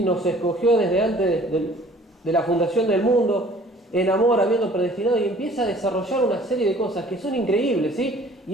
Nos escogió desde antes de la fundación del mundo en amor, habiendo predestinado, y empieza a desarrollar una serie de cosas que son increíbles, ¿sí?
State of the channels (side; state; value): both; normal; correlation 0.52